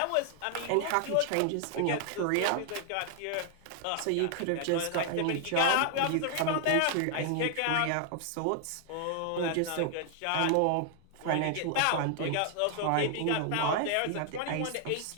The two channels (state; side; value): different; both; correlation 0.00